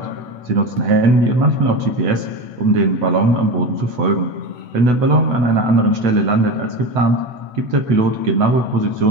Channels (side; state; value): left; late; 8.0 ms